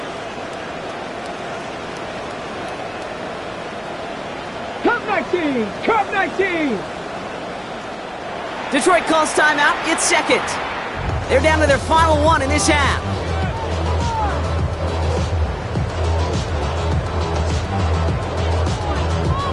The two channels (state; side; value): identical; both; correlation 1.00